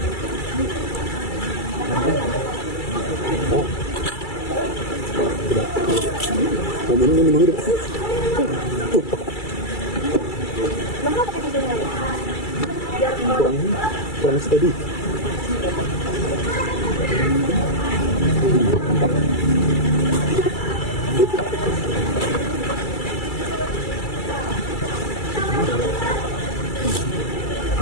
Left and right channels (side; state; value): right; late; 2.3 ms